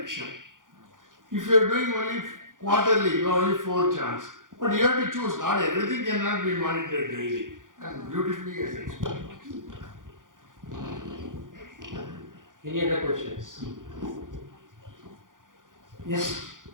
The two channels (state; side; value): late; left; 0.89 ms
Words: If you are doing only quarterly, you have only 4 chance. But you have to choose. Not everything cannot be monitored daily. And beautifully as explained. Any other questions? Yes.